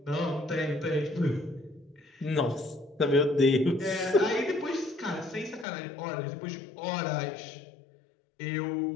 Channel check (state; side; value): drops out; right; at 5.7 s